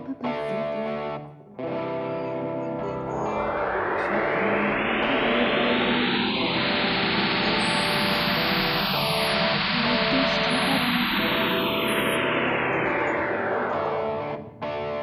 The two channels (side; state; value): both; identical; correlation 1.00